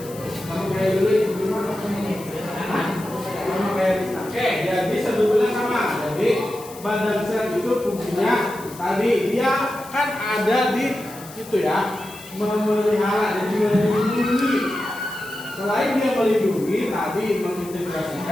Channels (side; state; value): left; noise; hiss, 18 dB below the sound